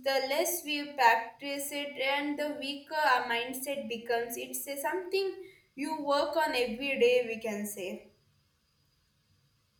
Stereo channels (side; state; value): both; identical; correlation 1.00